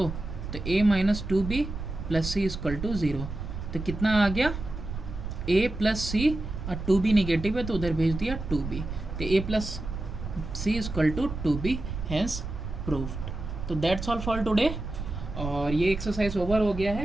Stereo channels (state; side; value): noise; right; rumble, 7 dB below the sound